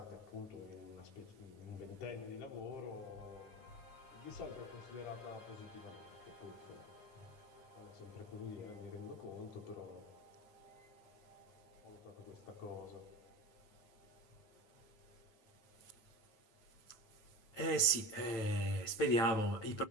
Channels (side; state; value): right; late; 9.0 ms